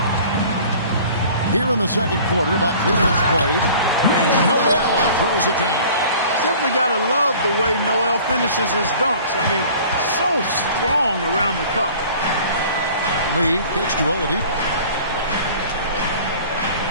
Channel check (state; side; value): inverted; both; correlation -0.47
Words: Here in the second quarter, about 3 minutes played, and Noel throws it down. Simply got to love the way Noel finishes his dunks. I mean, so strong around the cup. Lee kicks to Oladipo.